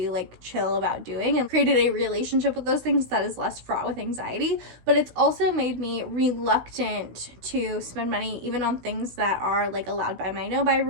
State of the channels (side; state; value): left; late; 16 ms